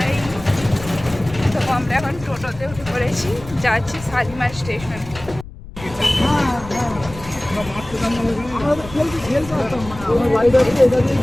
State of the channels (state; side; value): noise; left; rumble, 15 dB below the sound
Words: তো আমরা এখন টোটোতে উঠে পড়েছি, যাচ্ছি শালিমার স্টেশন।